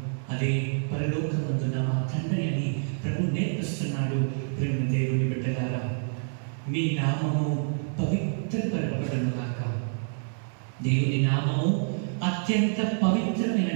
అదే పరలోకమందున మా తండ్రి అని ప్రభు నేర్పిస్తున్నాడు. ప్రేమ దేవుని బిడ్డలారా, మీ నామము పవిత్రపరపబడును గాక. దేవుని నామము అత్యంత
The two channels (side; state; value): left; silent; digital silence